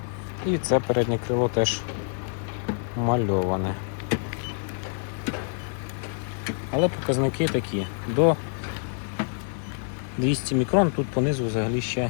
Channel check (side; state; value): right; silent; 61 dB below the other